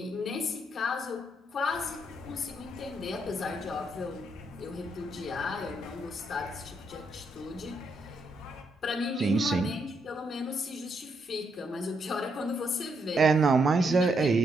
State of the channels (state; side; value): normal; both; correlation 0.77